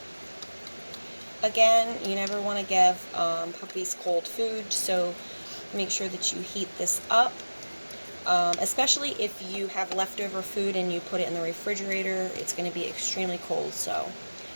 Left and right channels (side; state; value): both; inverted; correlation -1.00